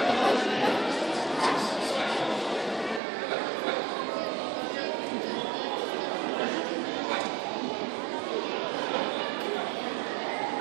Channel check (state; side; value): drops out; left; at 3.0 s